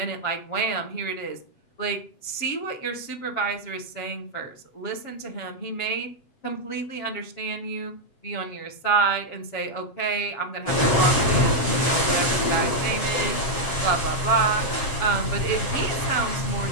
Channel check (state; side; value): late; right; 7.7 ms